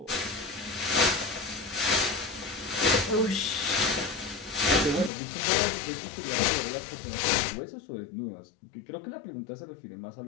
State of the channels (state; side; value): drops out; right; at 5.1 s